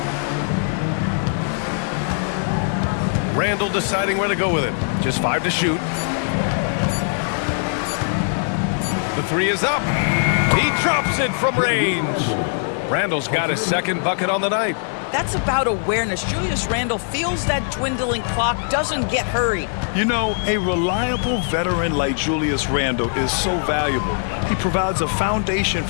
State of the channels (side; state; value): right; silent; digital silence